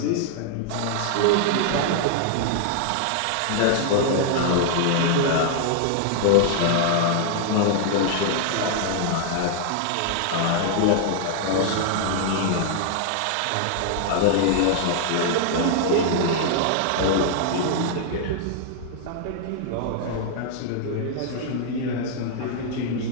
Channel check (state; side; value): different; both; correlation 0.00